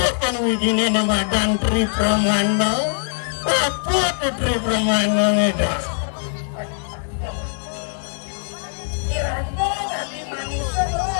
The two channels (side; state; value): right; silent; digital silence